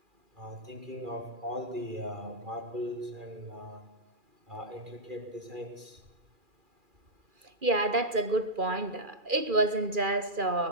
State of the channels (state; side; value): late; left; 2.4 ms